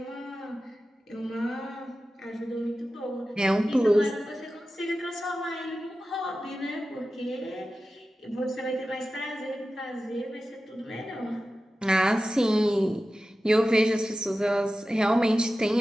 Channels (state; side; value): normal; both; correlation 0.94